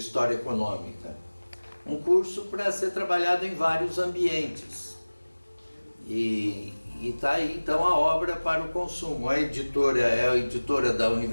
Econômica, um curso para ser trabalhado em vários ambientes. E está aí então a obra para o consumo. A editora é a editora da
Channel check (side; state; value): both; inverted; correlation -1.00